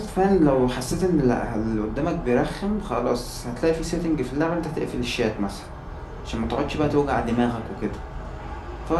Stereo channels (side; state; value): both; identical; correlation 1.00